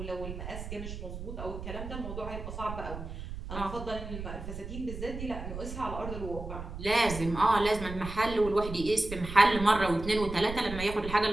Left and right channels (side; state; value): right; noise; rumble, 8 dB below the sound